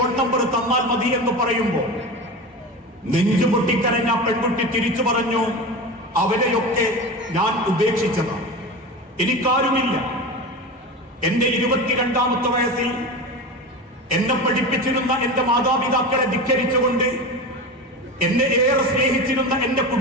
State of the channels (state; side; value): normal; both; correlation 0.26